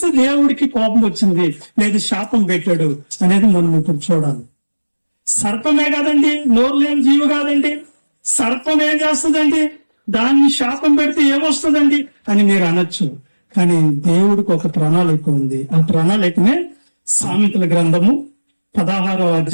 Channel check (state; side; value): inverted; both; correlation -1.00